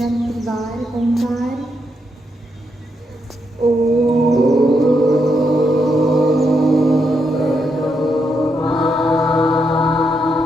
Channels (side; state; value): both; normal; correlation 0.80